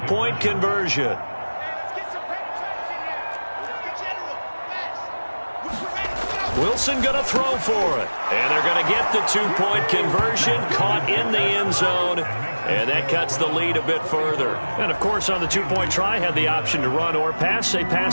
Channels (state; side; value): inverted; both; correlation -1.00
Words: conversion. Wilson going to throw for it. And they're going to get the two-point conversion, caught in the end zone. And that cuts the lead a bit further. And, of course, on the two-point try, had the option to run or pass. They